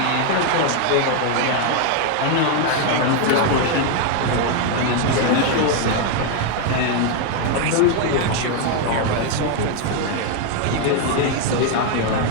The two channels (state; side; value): different; both; correlation 0.01